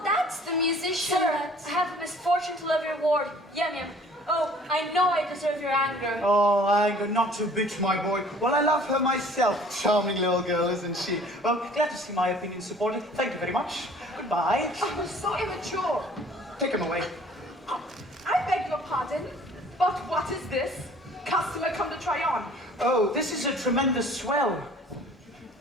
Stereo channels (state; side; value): normal; both; correlation 0.52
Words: that's the musician. Sir, I have the misfortune to love your ward. Yum yum. Oh, I know I deserve your anger. Oh, anger, not to bitch, my boy. Well, I love her myself. Charming little girl, isn't she? Well, glad to see my opinion supported. Thank you very much. Goodbye. Oh, so immature. Take him away. I beg your pardon, but what is this? Customer come to try on. Oh, this is a tremendous swell.